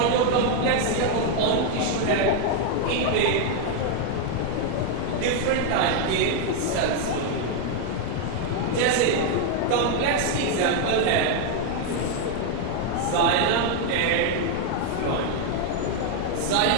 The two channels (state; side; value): different; both; correlation 0.00